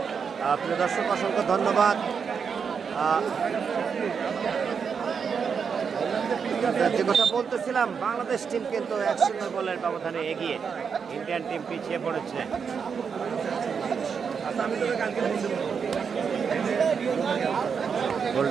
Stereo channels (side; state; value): left; quieter; 6.3 dB